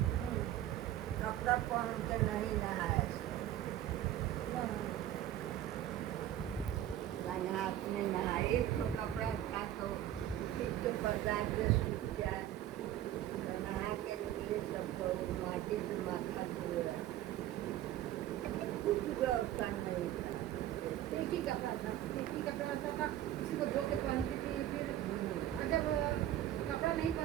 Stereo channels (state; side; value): quieter; left; 12.6 dB